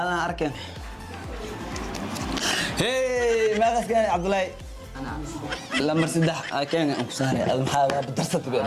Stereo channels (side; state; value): both; identical; correlation 1.00